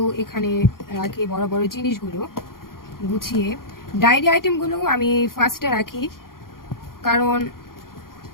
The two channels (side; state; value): right; late; 0.92 ms